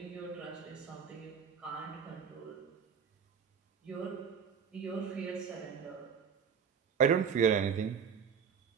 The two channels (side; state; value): left; quieter; 6.9 dB